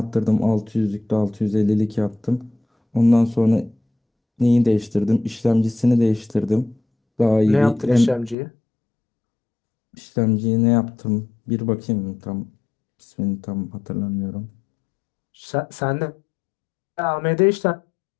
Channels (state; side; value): drops out; right; at 8.3 s